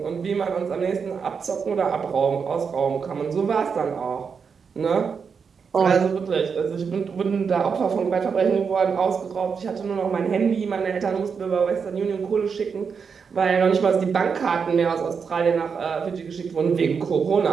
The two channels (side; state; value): left; quieter; 6.0 dB